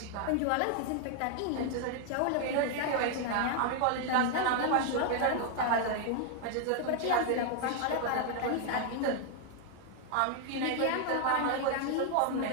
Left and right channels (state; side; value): different; both; correlation 0.00